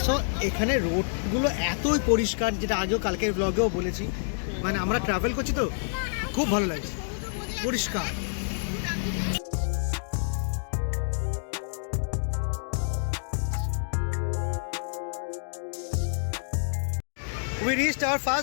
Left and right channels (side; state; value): right; silent; digital silence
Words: এখানে রোডগুলো এতই পরিষ্কার, যেটা আগেও কালকের ব্লগেও বলেছি। মানে আমরা ট্রাভেল করছি তো খুব ভালো লাগছে, পরিষ্কার। We reached hour